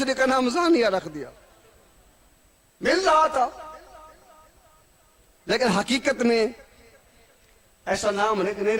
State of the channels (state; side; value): identical; both; correlation 1.00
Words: کا نام ثانیہ رکھ دیا، مل رہا تھا. لیکن حقیقت میں ایسا نام نہیں